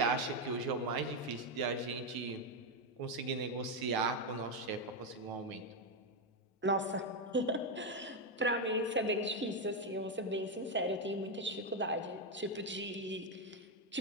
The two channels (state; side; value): normal; both; correlation 0.05